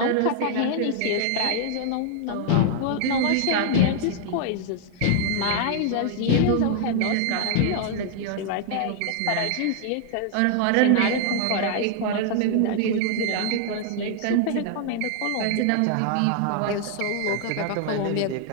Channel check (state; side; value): different; both; correlation 0.00